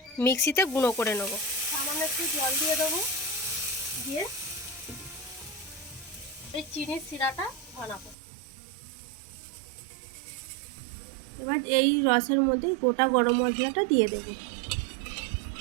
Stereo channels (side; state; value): left; drops out; at 8.2 s